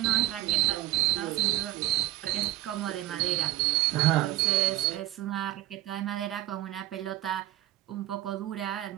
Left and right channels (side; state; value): left; quieter; 15.2 dB